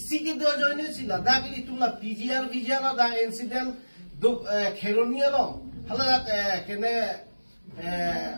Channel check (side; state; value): both; inverted; correlation -1.00